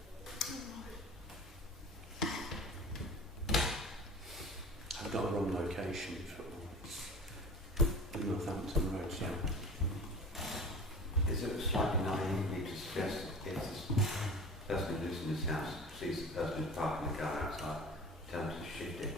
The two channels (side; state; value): both; normal; correlation 0.38